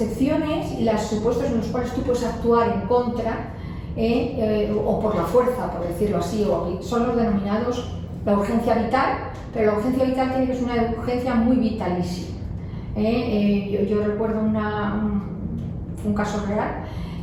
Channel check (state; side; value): identical; both; correlation 1.00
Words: y los supuestos en los cuales tú puedes actuar en contra o por la fuerza, por decirlo así, son los denominados la urgencia vital, pero la urgencia vital tiene que ser una urgencia muy vitalísima. Yo recuerdo un caso real,